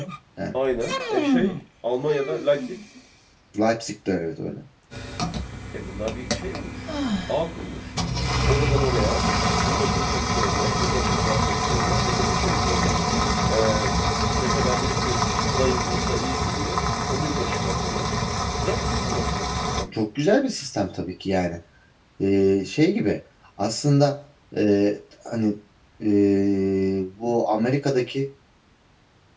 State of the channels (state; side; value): identical; both; correlation 1.00